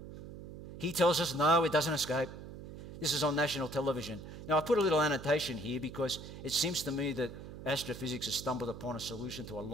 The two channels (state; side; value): noise; right; hum, 12 dB below the sound